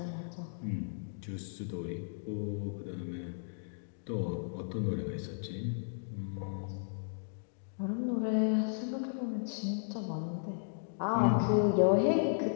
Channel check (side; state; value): right; silent; digital silence